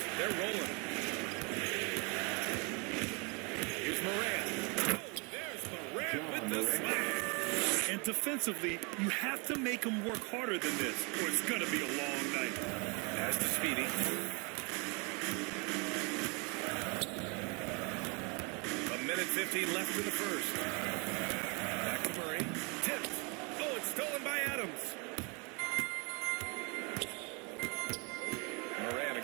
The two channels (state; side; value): quieter; left; 31.7 dB